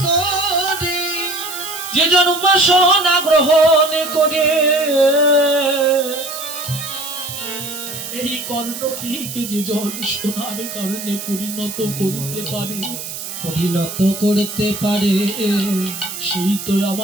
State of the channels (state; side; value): noise; right; hiss, 8 dB below the sound